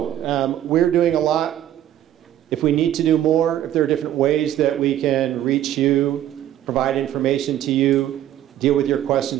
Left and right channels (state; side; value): quieter; left; 12.0 dB